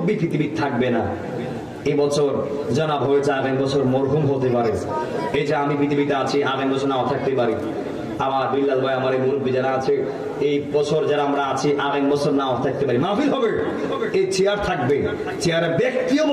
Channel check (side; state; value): both; identical; correlation 1.00